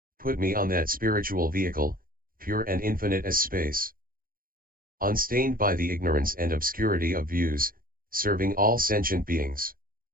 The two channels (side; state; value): left; late; 0.42 ms